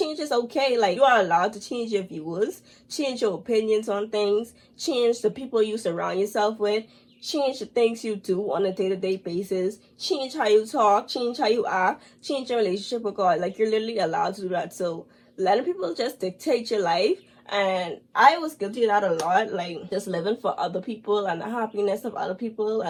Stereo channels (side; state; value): both; identical; correlation 1.00